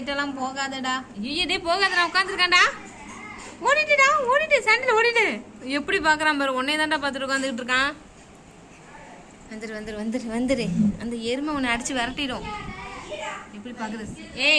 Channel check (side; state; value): both; identical; correlation 1.00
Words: போகாதடா. ஐயோ டே போகாதடா, உட்காந்துருக்கான்டா. ஓடிட்டுடா, ஓடிட்டு சாண்டில் ஓடிட்டு. எப்படி பார்க்குறான் பாரு. உன்னே தான்டா பார்த்துட்டு உட்காந்துக்கிட்டு இருக்கான். வந்துரு வந்துரு வந்துரு வந்துரு. அந்த எருமை உன்னை அடிச்சு விரட்டிடும். எப்படி பார்க்குது?